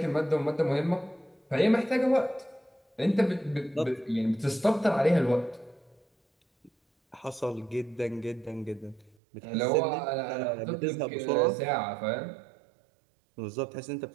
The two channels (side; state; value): left; drops out; at 9.2 s